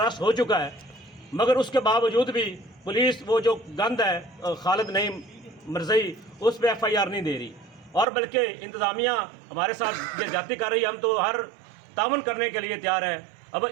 हो चुका है, मगर उसके बावजूद भी पुलिस वो जो गंद है खालिद नईम मरज़ई उस पर FIR नहीं दे रही, और बल्कि इंतज़ामिया हमारे साथ ज्यादती कर रही है। हम तो हर ताउन करने के लिए तैयार है। अब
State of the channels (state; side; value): drops out; left; at 8.1 s